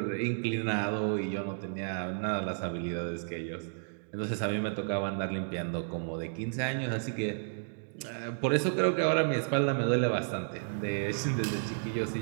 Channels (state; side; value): silent; left; digital silence